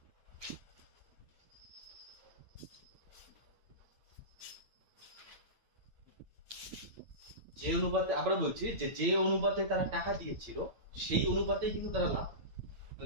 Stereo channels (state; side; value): late; left; 8.8 ms